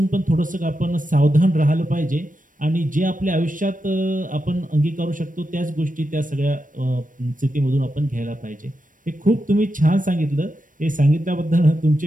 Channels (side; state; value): left; late; 0.38 ms